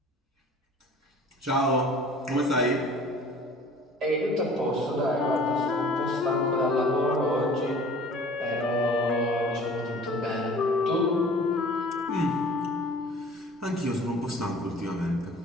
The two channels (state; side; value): normal; both; correlation 0.47